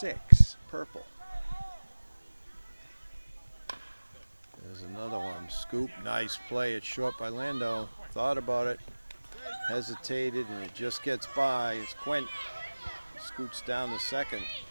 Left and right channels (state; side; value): inverted; both; correlation -1.00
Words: Purple. There's another one. Scoop. Nice play. It's short by Lando. Thought about it. Hesitated, and it just gets by. It's Quint. Scoots down to second.